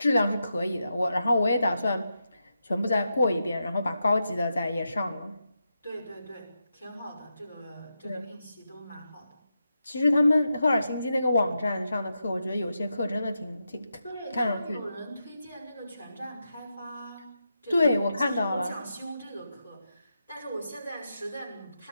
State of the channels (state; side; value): inverted; both; correlation -0.87